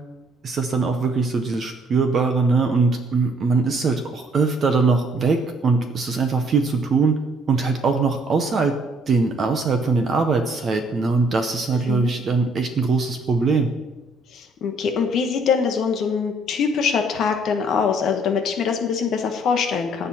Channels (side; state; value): both; normal; correlation 0.64